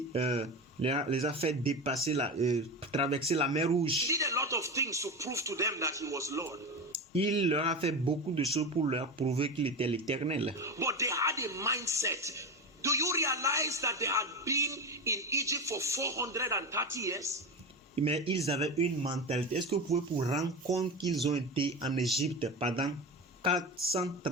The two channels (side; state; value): both; normal; correlation 0.22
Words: les a fait dépasser traverser la mer Rouge. did a lot of things to prove to them that he was Lord. Il leur a fait beaucoup de choses pour leur prouver qu'il était l'Éternel. But they had a mindset. Do you realize that they had been in Egypt for 430 years? Mais ils avaient une mentalité. Est-ce que vous pouvez vous rendre compte qu'ils ont été en Égypte pendant